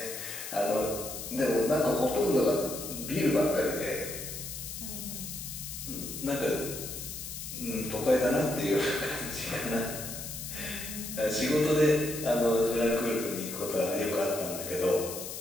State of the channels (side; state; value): left; noise; hiss, 8 dB below the sound